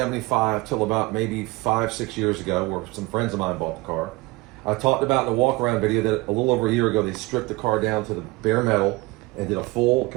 till about maybe 5-6 years ago, where some friends of mine bought the car. I talked about in the walk-around video that a little over a year ago they stripped the car down to the bare metal and did a full,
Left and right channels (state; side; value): quieter; left; 22.4 dB